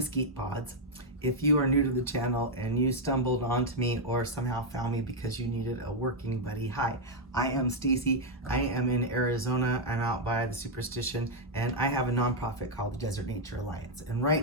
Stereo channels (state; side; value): normal; both; correlation -0.01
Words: pods. If you are new to the channel and you stumbled onto me or somehow found me because you needed a working buddy, hi, I am Stacy. I am in Arizona. I'm out by the Superstition, and I have a nonprofit called the Desert Nature Alliance. And